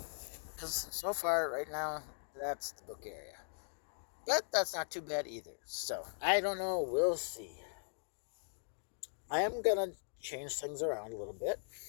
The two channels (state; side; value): silent; right; digital silence